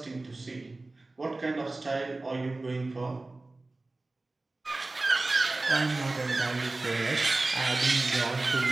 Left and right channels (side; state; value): left; quieter; 3.1 dB